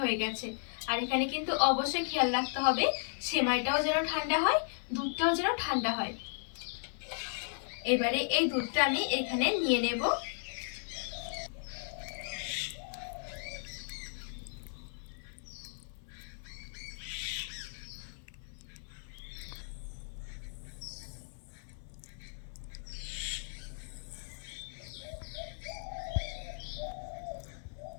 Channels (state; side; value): silent; right; 54 dB below the other